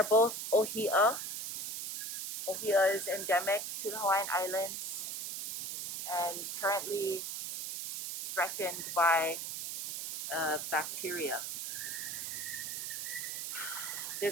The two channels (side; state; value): right; noise; hiss, 5 dB below the sound